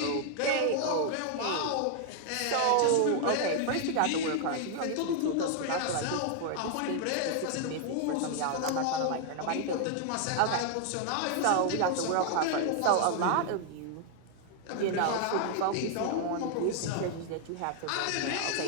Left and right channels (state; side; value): different; both; correlation 0.00